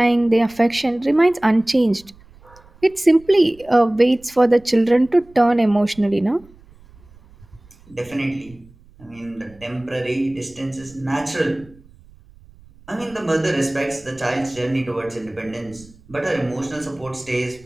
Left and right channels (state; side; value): noise; right; rumble, 26 dB below the sound